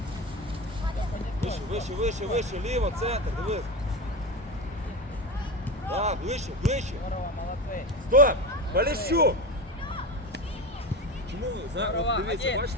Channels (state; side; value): normal; both; correlation 0.22